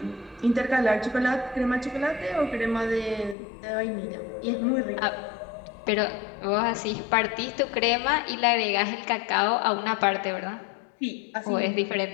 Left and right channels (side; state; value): right; drops out; at 3.4 s